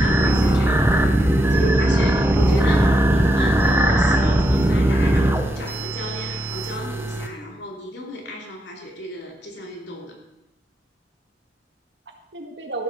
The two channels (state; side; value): normal; both; correlation 0.82